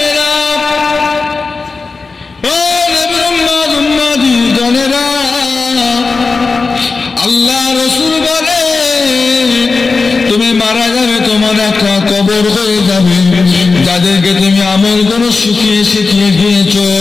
আল্লাহ রাসূল বলে, তুমি মারা যাবে, তোমার একটা কবর হয়ে যাবে। যাদেরকে তুমি আমল গুলো শিখিয়ে শিখিয়ে গিয়েছো,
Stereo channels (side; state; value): right; quieter; 4.2 dB